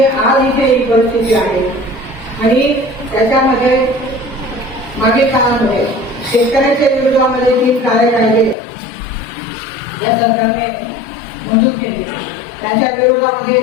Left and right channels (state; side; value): drops out; right; at 8.6 s